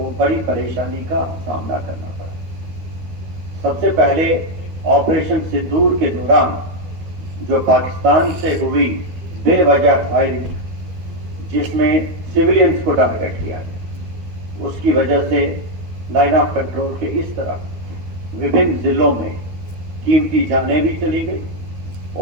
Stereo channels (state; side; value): late; left; 12 ms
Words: बड़ी परेशानी का सामना करना पड़ा। सबसे पहले ऑपरेशन सिंदूर के दौरान जो पाकिस्तान से हुई बेवजह फायरिंग, जिसमें सिविलियंस को टारगेट किया गया, उसकी वजह से लाइन ऑफ कंट्रोल के इस तरफ विभिन्न जिलों में कीमती जानें भी चली गई